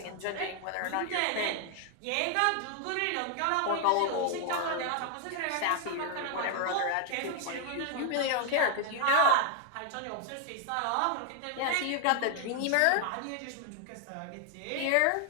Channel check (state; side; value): different; both; correlation 0.00